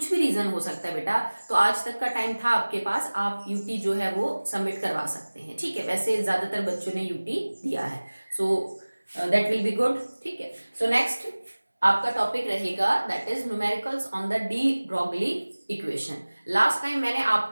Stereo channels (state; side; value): inverted; both; correlation -1.00